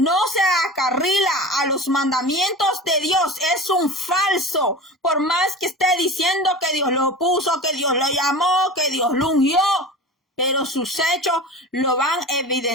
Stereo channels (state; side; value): normal; both; correlation 0.33